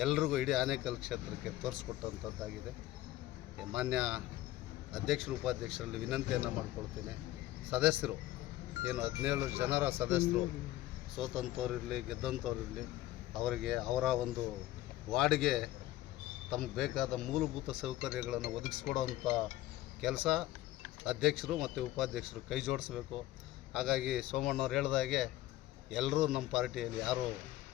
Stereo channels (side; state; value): right; quieter; 15.4 dB